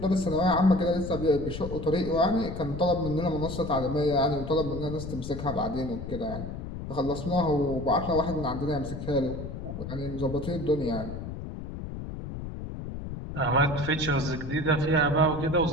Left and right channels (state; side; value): noise; left; rumble, 8 dB below the sound